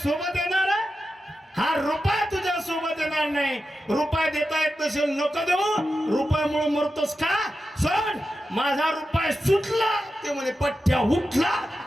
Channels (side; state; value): both; normal; correlation 0.91